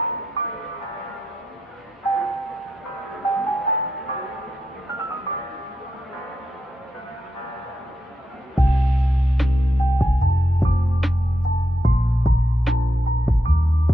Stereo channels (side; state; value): both; normal; correlation 0.84